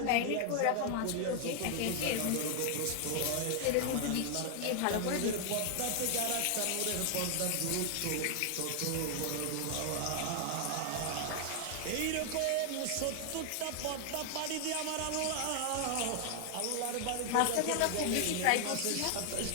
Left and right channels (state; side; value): different; both; correlation 0.00